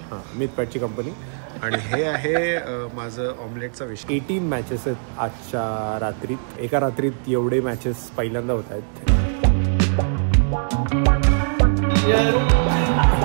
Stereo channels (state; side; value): silent; left; digital silence